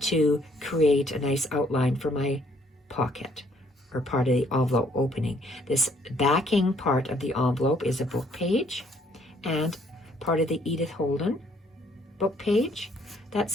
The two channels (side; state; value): both; normal; correlation 0.65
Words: to create a nice outline for my pocket, or part of the envelope opening. This backing part of the envelope is a book page and part of the Edith Holden book page